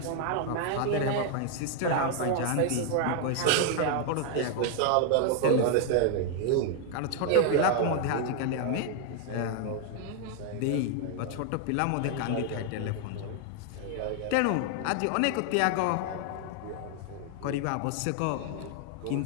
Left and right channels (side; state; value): both; different; correlation 0.00